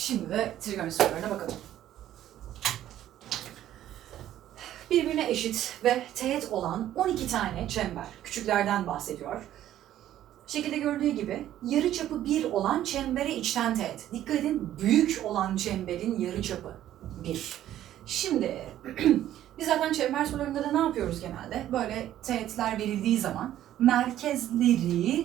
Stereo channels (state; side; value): quieter; left; 12.4 dB